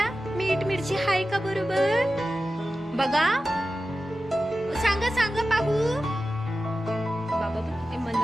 मीठ मिरची हाय का बरोबर बघा. सांगा सांगा पाहू. बाबा ते मन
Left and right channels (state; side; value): normal; both; correlation 0.94